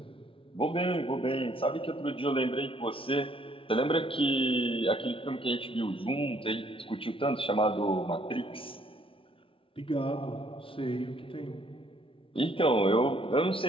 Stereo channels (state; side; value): late; right; 0.26 ms